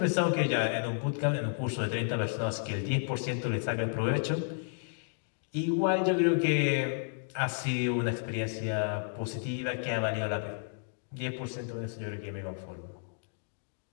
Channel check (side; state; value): right; silent; digital silence